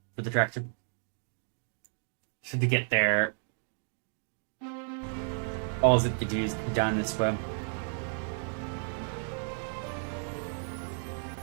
for the tractor. So to get there, all it to do is go down this way.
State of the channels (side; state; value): left; silent; 56 dB below the other